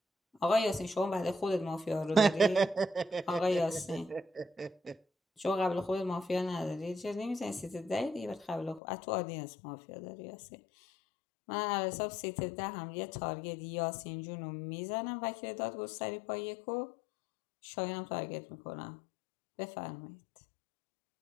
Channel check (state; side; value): drops out; right; at 8.8 s